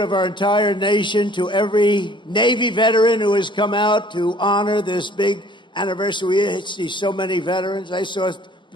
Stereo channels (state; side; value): normal; both; correlation 0.55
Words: our entire nation to every Navy veteran who has come out to honor this big anniversary. We see so many veterans. I saw